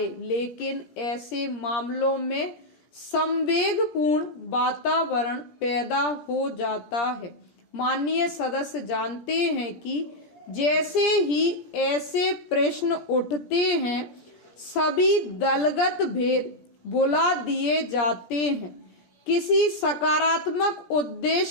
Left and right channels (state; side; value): late; right; 17 ms